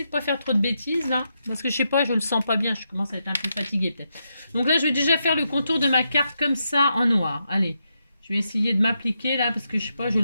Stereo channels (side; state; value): both; inverted; correlation -0.83